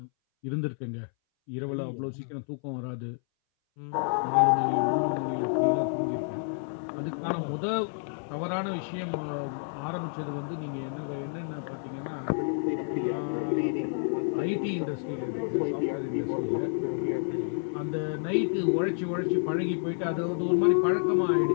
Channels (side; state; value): right; silent; 58 dB below the other